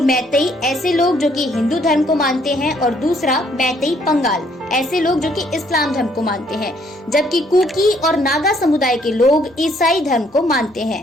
मैतेई, ऐसे लोग जो कि हिंदू धर्म को मानते हैं, और दूसरा मैतेई पंगाल, ऐसे लोग जो कि इस्लाम धर्म को मानते हैं, जबकि कुकी और नागा समुदाय के लोग ईसाई धर्म को मानते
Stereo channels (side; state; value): both; normal; correlation 0.66